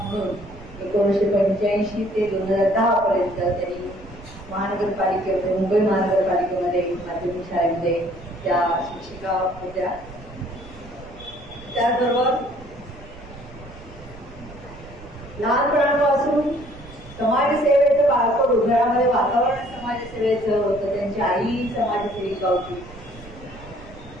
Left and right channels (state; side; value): noise; right; rumble, 18 dB below the sound